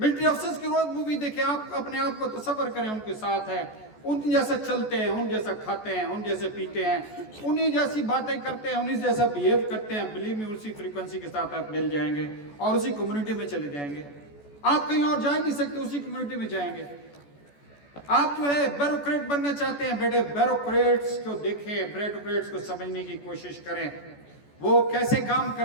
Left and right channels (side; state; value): right; late; 14 ms